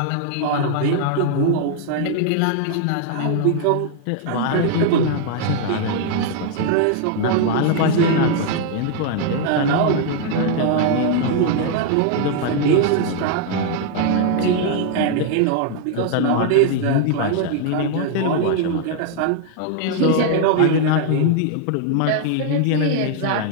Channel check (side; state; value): both; different; correlation 0.00